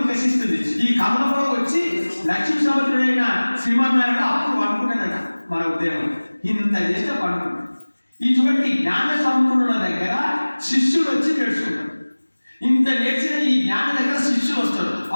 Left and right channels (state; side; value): inverted; both; correlation -1.00